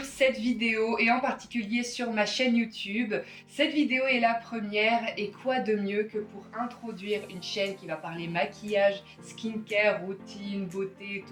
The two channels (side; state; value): both; identical; correlation 1.00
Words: cette vidéo et en particulier sur ma chaîne YouTube. Cette vidéo est la première et quoi de mieux que pour introduire une chaîne qui va parler maquillage, skincare, routine, beauté,